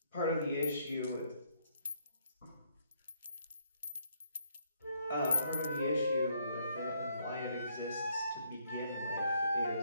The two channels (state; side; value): inverted; both; correlation -0.72